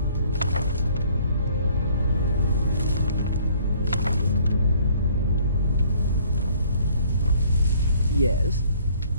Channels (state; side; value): inverted; both; correlation -0.59